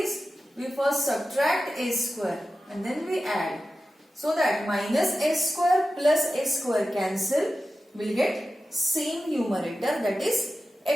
we first subtract a square and then we add, so that minus a square plus a square cancel, will get same numerator, that is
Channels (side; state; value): both; normal; correlation 0.93